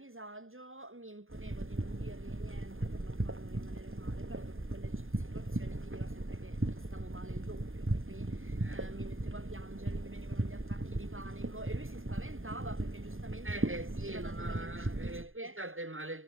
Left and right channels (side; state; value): left; late; 0.59 ms